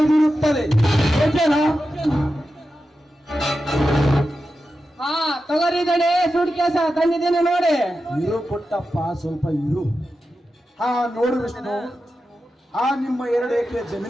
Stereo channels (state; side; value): normal; both; correlation 0.91